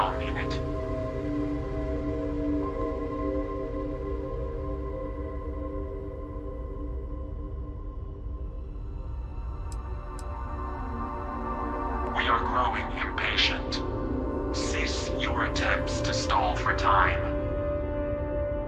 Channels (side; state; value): both; identical; correlation 1.00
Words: in it. We are growing impatient. Cease your attempts to stall for time.